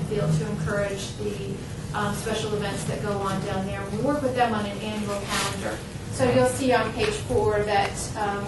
Field to encourage the special events that go on down there. We work with them on an annual calendar. So you'll see on page 4 that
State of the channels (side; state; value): both; identical; correlation 1.00